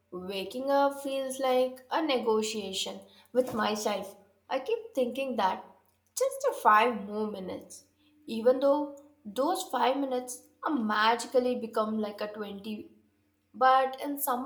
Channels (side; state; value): both; identical; correlation 1.00